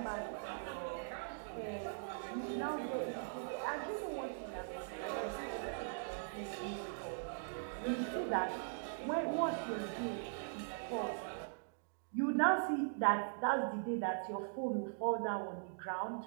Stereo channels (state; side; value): silent; left; digital silence